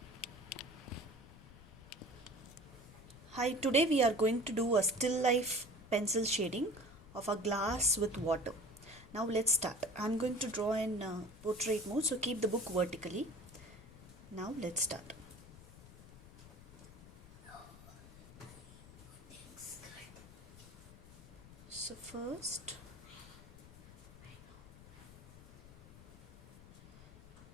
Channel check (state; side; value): noise; left; rumble, 18 dB below the sound